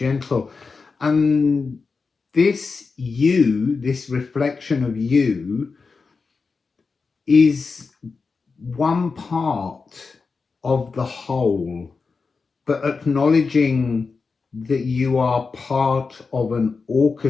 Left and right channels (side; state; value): right; quieter; 4.6 dB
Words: And this you, this reflection of you, is one part of the whole, but acknowledging that you are part of an